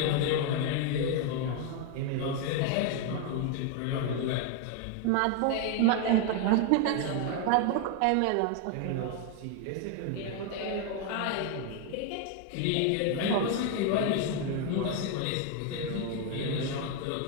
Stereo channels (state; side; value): different; both; correlation 0.01